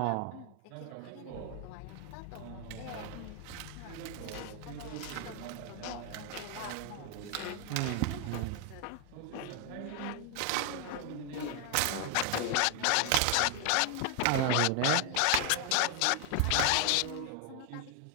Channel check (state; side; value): different; both; correlation 0.00